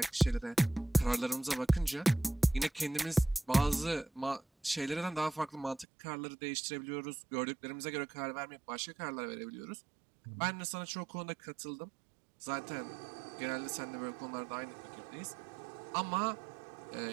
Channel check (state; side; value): drops out; left; at 5.9 s